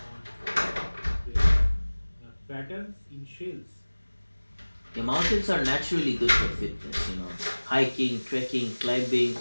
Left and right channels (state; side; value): inverted; both; correlation -1.00